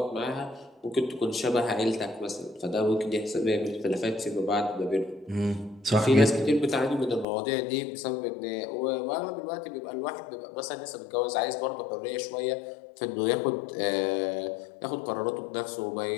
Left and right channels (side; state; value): right; drops out; at 7.2 s